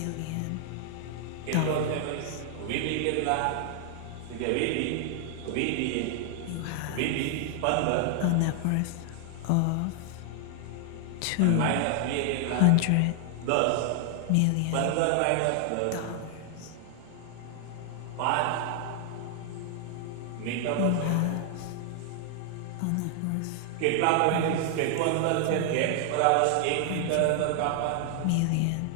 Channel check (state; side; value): different; both; correlation 0.00